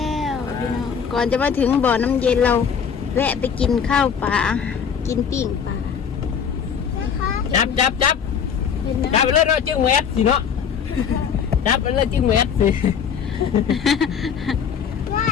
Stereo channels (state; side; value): quieter; right; 7.2 dB